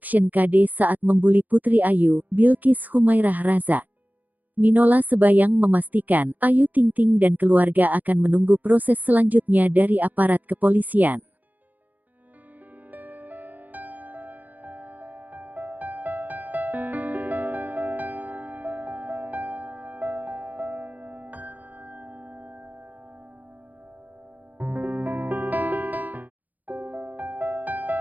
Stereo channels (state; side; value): late; left; 0.082 ms